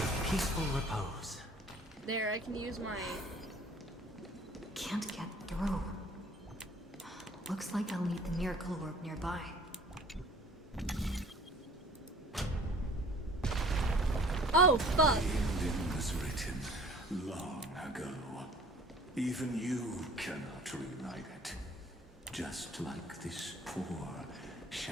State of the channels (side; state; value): both; normal; correlation 0.51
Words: peaceful repose. There, I can use my... Can't get through. Looks like I'll need the miracle orb nearby. Oh, fuck! The ending was written long ago. Even you cannot rewrite it. Just like this poor